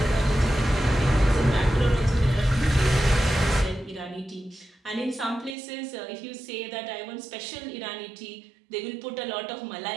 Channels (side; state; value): left; drops out; at 5.6 s